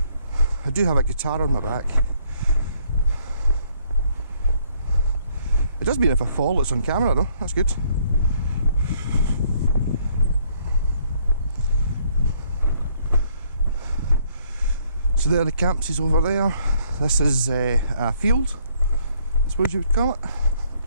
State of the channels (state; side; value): inverted; both; correlation -0.66